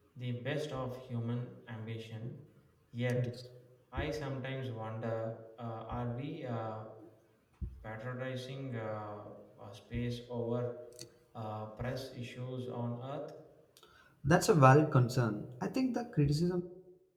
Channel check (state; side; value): identical; both; correlation 1.00